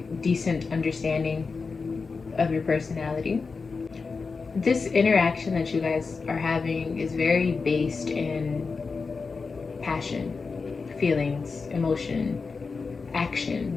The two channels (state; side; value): quieter; right; 4.6 dB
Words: decent understanding of your personality. This interaction that you guys are having is very based in passion, feelings, emotion, action,